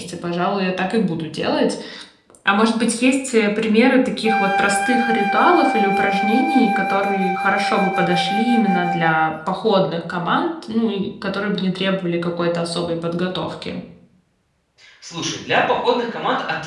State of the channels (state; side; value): identical; both; correlation 1.00